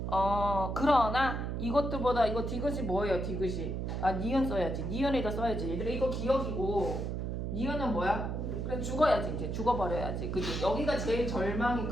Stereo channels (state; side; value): noise; right; hum, 2 dB below the sound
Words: 그러나 이것들보다 이거 디귿이 뭐예요? 디귿이 니은 써야지. 니은에다 써야지. 얘들아 이거 기억이고 니은은 뭐야? 그래 죽어야지. 이제 죽어버려야지. 그지? 여기가 제일 절망이